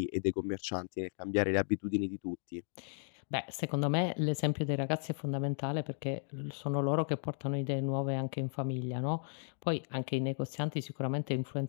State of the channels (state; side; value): silent; right; digital silence